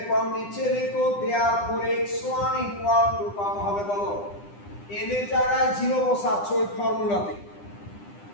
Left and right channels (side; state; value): right; late; 9.9 ms